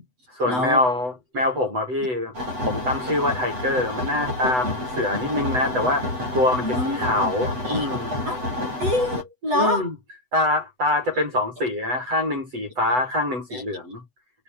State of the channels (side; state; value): left; late; 8.0 ms